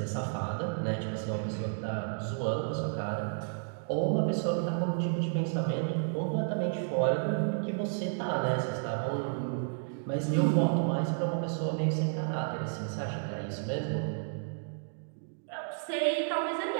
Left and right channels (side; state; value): left; silent; digital silence